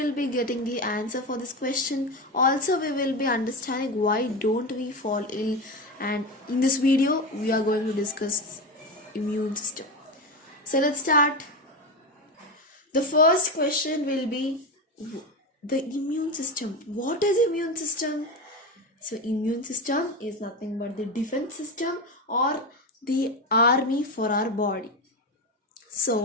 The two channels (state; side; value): normal; both; correlation 0.19